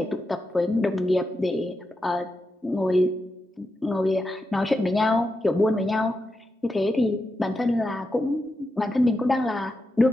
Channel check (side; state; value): both; normal; correlation 0.87